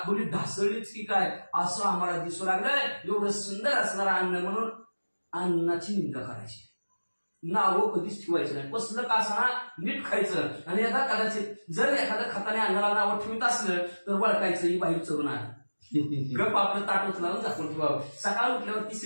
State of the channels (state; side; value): inverted; both; correlation -1.00